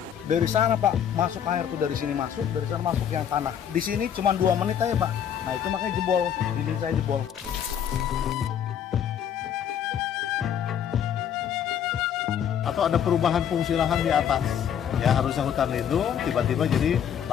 Dari sana Pak, masuk air tuh dari sini masuk, dari sana masuk yang tanah. Di sini cuma 2 menit aja Pak. Nah itu makanya jebol, dinding saya jebol. Atau ada perubahan fungsi lahan di atas. Ya harusnya hutan lindung, tiba-tiba jadi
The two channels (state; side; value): quieter; right; 8.9 dB